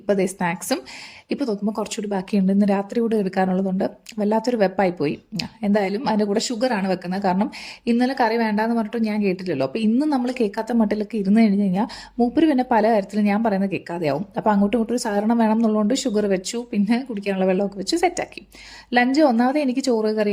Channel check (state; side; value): identical; both; correlation 1.00